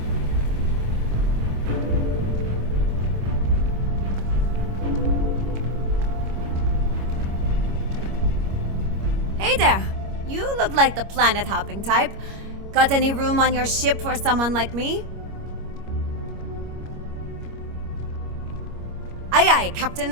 Hey there! You look like the planet-hopping type. Got any room on your ship for someone like me? Aye aye,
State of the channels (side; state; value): left; late; 25 ms